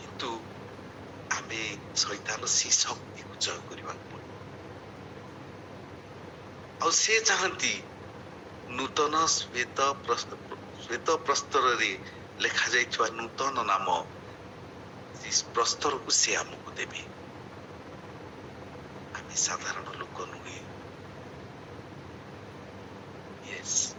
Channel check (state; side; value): identical; both; correlation 1.00